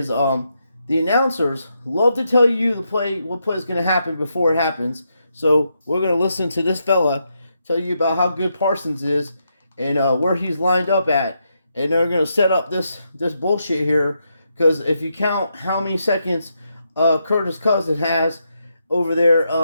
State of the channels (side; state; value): both; inverted; correlation -0.82